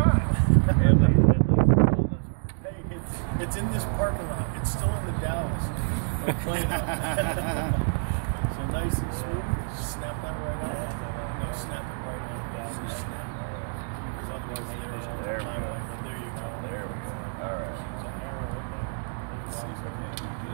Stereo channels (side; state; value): left; silent; digital silence